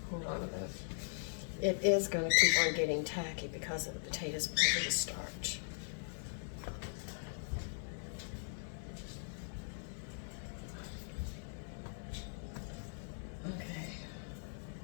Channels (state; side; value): silent; right; digital silence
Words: hold on a minute. it is going to keep on getting tacky because of the potatoes, because of the starch. Okay.